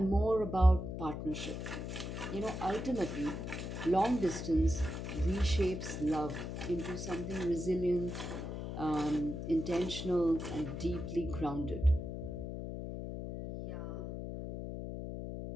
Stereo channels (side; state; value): left; noise; hum, 6 dB below the sound